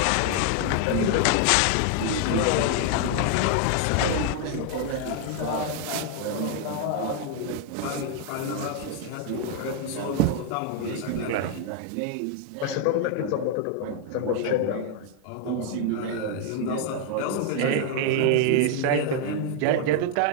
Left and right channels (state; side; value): different; both; correlation 0.00